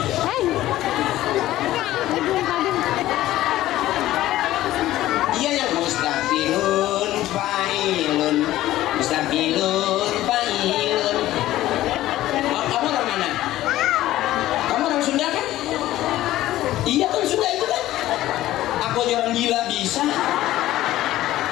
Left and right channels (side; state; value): right; quieter; 14.9 dB